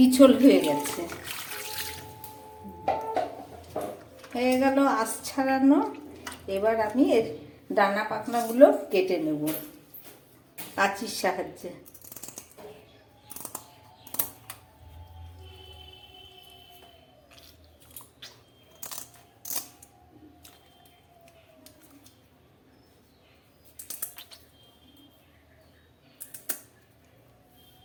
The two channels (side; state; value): both; identical; correlation 1.00